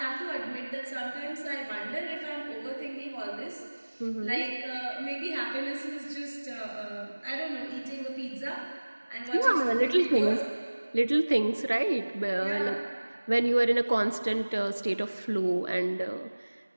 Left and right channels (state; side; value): inverted; both; correlation -1.00